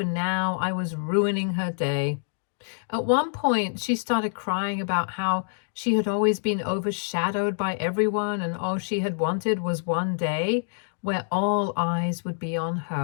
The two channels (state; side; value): silent; right; digital silence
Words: now I was ruining her day. At one point, she started crying about how she had always been overshadowed by everyone and all she had wanted was one day where all eyes would be on